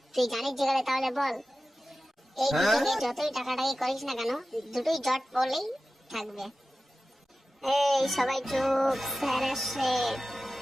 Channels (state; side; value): normal; both; correlation 0.95